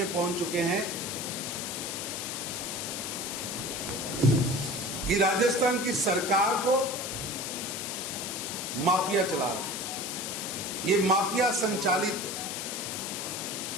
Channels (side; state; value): left; noise; hiss, 4 dB below the sound